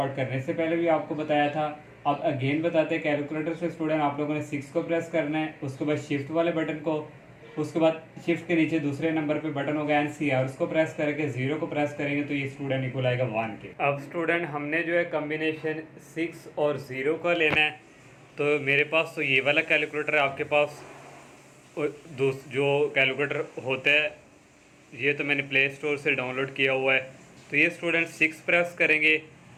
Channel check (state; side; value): identical; both; correlation 1.00